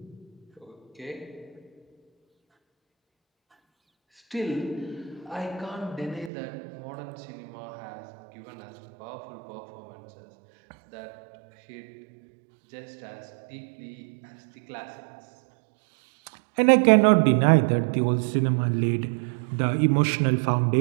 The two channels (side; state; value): left; drops out; at 6.3 s